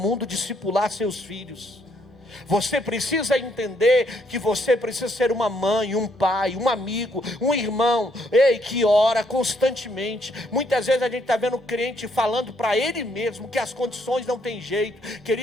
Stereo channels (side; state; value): both; normal; correlation 0.71